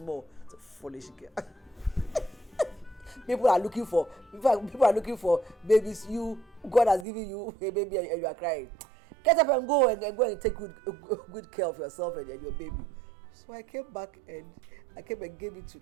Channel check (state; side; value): drops out; left; at 7.1 s